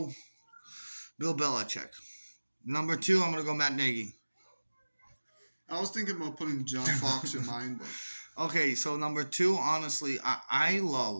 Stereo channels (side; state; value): both; inverted; correlation -1.00